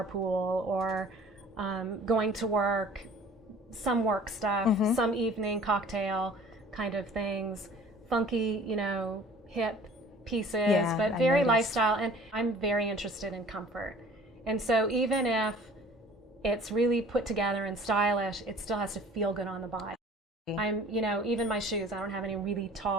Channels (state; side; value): normal; both; correlation 0.48